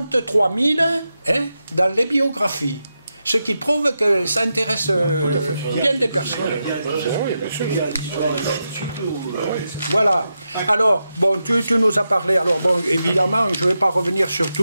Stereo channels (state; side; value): inverted; both; correlation -0.88